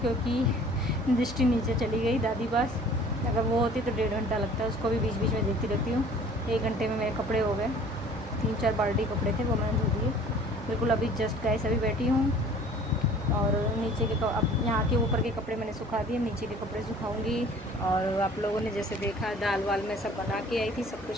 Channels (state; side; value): normal; both; correlation 0.50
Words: दृष्टि नीचे चली गई दादी पास। अगर वो होती तो 1.5 घंटा लगता है, उसको भी बीच बीच में देखती रहती हूँ। 1 घंटे में मेरे कपड़े हो गए, 3-4 बाल्टी कपड़े थे वो मैंने धो दिए बिल्कुल। अभी जस्ट गाइस अभी बैठी हूँ और नीचे के अब यहाँ के ऊपर के कपड़े मैंने सुखा दिए, नीचे के कपड़े सुखाऊंगी। और आप लोगों ने जैसे देखा दाल वाल मैं सब बना के आई थी, सब